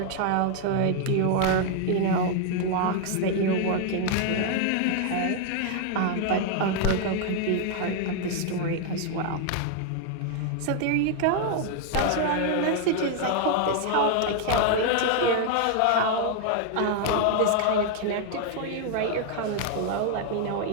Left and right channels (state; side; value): different; both; correlation 0.00